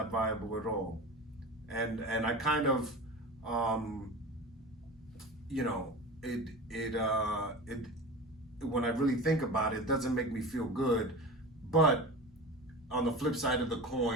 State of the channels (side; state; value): both; normal; correlation 0.31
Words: viable at all. And I kind of, when I really think about it, it doesn't make me feel good. But on the flip side of the